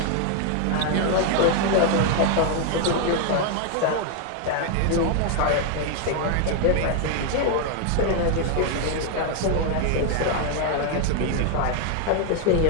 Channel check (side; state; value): both; different; correlation 0.00